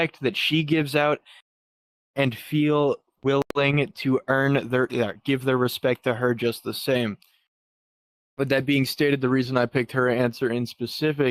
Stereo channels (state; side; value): identical; both; correlation 1.00